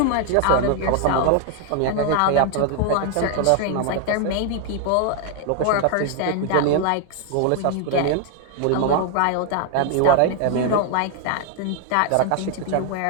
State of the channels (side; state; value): both; different; correlation 0.00